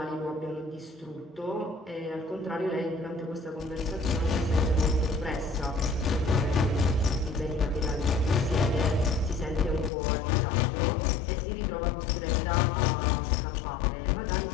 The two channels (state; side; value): drops out; right; at 9.9 s